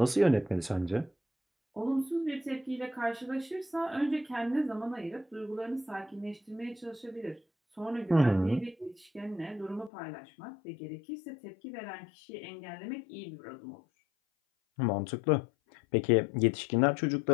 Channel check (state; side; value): drops out; right; at 9.9 s